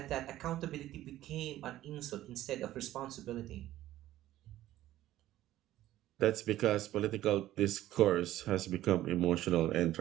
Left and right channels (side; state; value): left; quieter; 14.2 dB